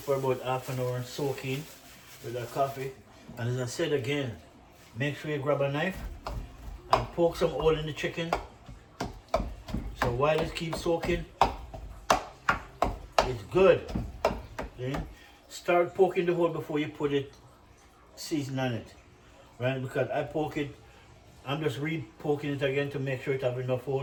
about half an hour and soak in with that coffee. And as I said again, make sure you grab a knife and poke some hole in the chicken. So while it keeps soaking, it's good. Then start poking the hole before you put it season on it. Right? Because I poke it, I'm just re-poking it again to make sure it have enough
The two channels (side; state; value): both; identical; correlation 1.00